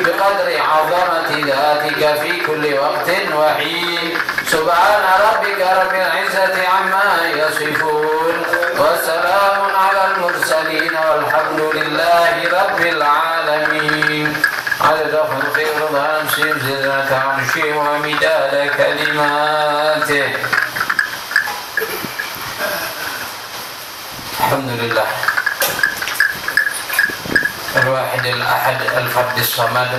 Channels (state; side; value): identical; both; correlation 1.00